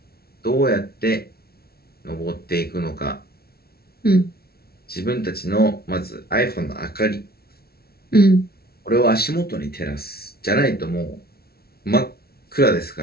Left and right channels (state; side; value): late; right; 0.45 ms